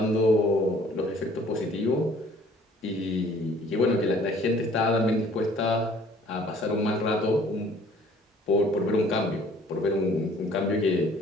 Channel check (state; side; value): normal; both; correlation 0.55